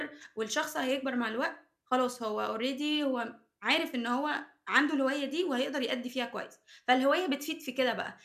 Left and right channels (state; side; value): identical; both; correlation 1.00